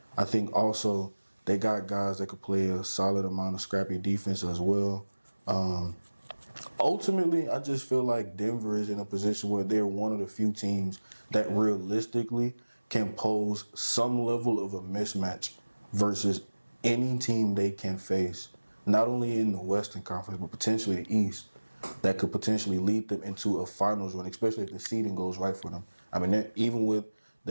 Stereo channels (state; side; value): inverted; both; correlation -1.00